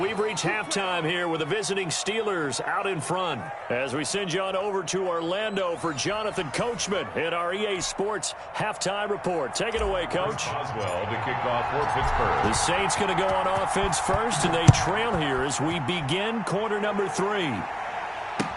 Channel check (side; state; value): both; identical; correlation 1.00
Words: reached halftime here with the visiting Steelers out in front. As we send you on over to Orlando for Jonathan Coachman in our EA Sports halftime report. Take it away, Coach. Oswell to kick off for Pittsburgh. The Saints going to go on offense first, and they trail here as we begin quarter number 3.